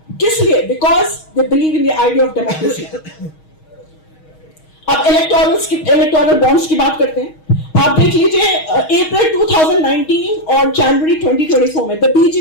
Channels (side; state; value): right; late; 6.4 ms